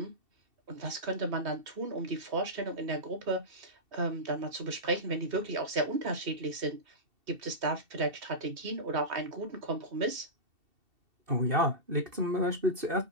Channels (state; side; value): late; left; 2.7 ms